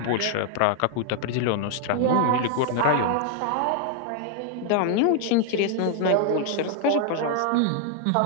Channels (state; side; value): different; both; correlation 0.00